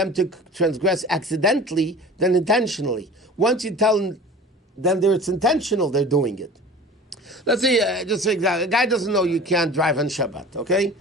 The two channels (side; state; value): both; normal; correlation 0.40